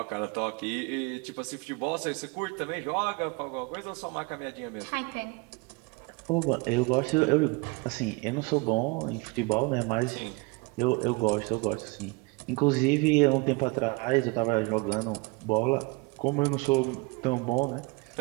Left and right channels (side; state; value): left; quieter; 26.9 dB